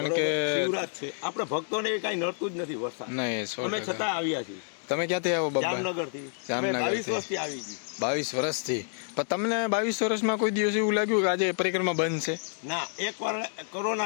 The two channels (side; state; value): right; silent; 59 dB below the other